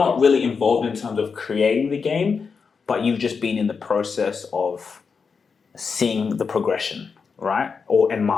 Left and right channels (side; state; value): right; quieter; 5.5 dB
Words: really involved in terms of creating the game, but you've just been in the process of seeing the progression, right? And